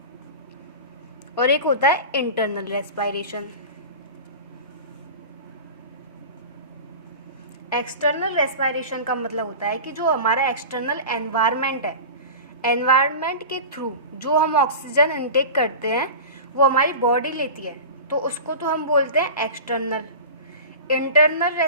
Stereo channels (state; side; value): inverted; both; correlation -0.32